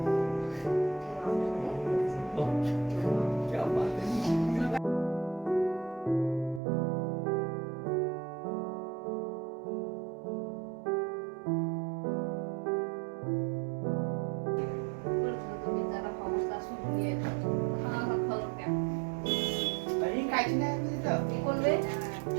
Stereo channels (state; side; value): drops out; left; at 6.6 s